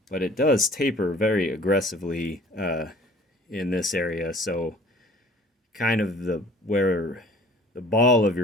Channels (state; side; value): normal; both; correlation 0.50